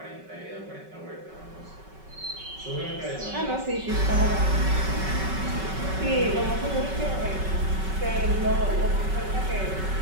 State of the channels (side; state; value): left; late; 5.3 ms